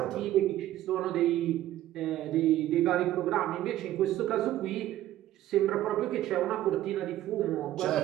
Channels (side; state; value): left; quieter; 13.9 dB